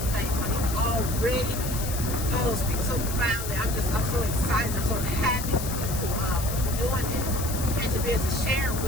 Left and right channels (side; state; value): left; noise; hiss, 7 dB below the sound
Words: things. But he's already speaking so profoundly. I'm so excited. I'm so happy.